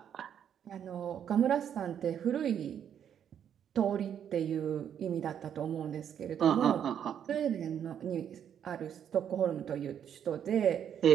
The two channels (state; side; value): quieter; left; 9.0 dB